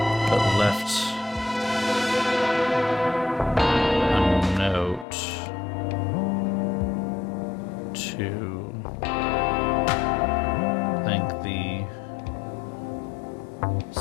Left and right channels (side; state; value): right; drops out; at 5.1 s